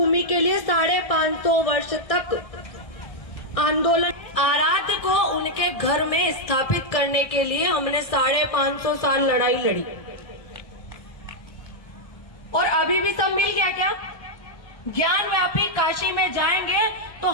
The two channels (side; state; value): right; late; 1.6 ms